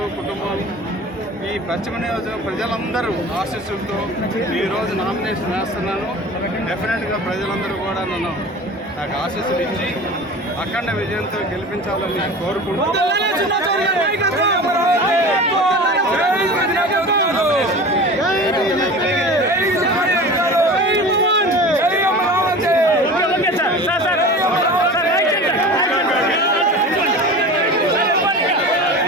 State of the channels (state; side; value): normal; both; correlation 0.35